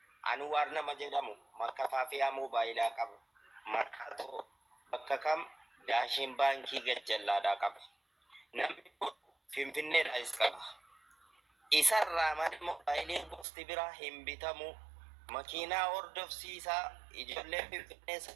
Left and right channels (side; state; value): left; drops out; at 13.5 s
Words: Anwaar nama jedhamu makka faafiyaa moobaayilaa qaba. Markaatoo bakka kam daashin baankii gajjallaadhaa qaba. Namni kun Finfinneedhaas qaba. Isarraa mana moobaayiliin gosti biraa hin bitamu. Makiinaa hordofsiisaa ijoollee Finfinnee